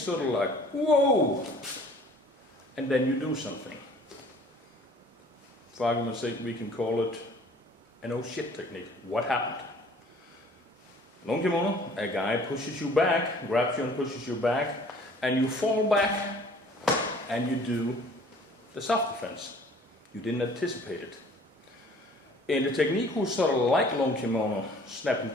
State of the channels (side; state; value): both; normal; correlation 0.53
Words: sort of like, whoa! And then you do something. For argument's sake, we can call it an oh shit technique. What happened? Lone kimono, a guy pushes you back, grabs you and pushes you back, and you fall back, and you do the self-defense. You didn't anticipate it. In the technique who's sort of like lone kimono, snap and